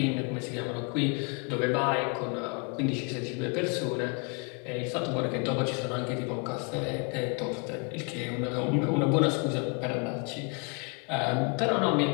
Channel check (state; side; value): quieter; right; 34.3 dB